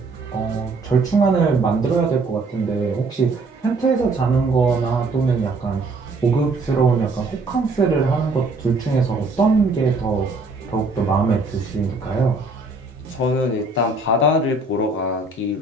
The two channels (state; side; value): quieter; left; 3.4 dB